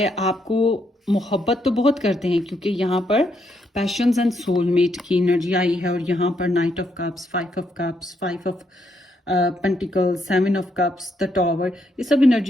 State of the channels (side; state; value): both; normal; correlation 0.76